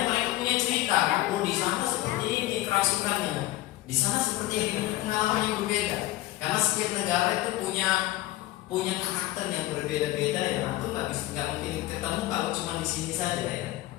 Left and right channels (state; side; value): quieter; right; 16.3 dB